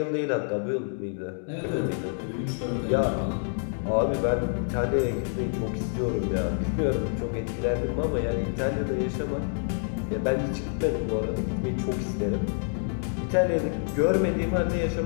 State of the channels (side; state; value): right; silent; digital silence